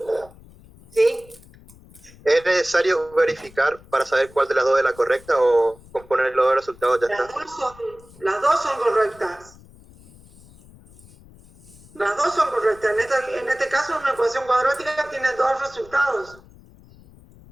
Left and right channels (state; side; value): noise; left; rumble, 24 dB below the sound